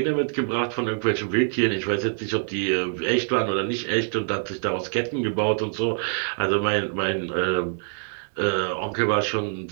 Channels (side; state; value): left; silent; 62 dB below the other